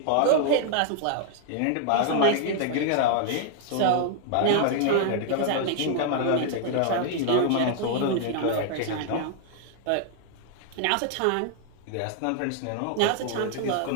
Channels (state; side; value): different; both; correlation 0.00